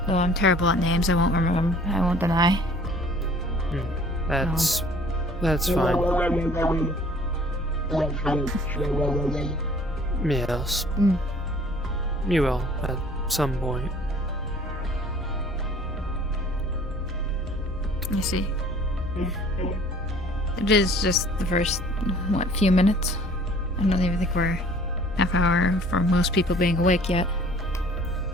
Though I'm terrible at names, I won't remember. I won't deny. That's fine. Yes. You will at some point. I see. It is just the first, few minutes? I don't even think we're half hour for most people being awake yet.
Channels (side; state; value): both; normal; correlation 0.52